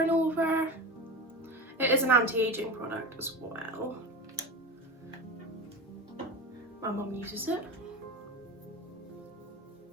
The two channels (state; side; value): normal; both; correlation 0.26